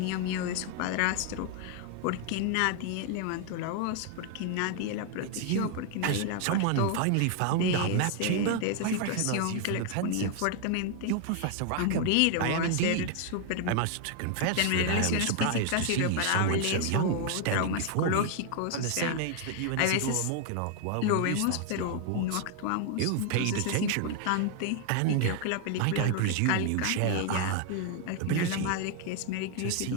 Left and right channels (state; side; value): different; both; correlation 0.00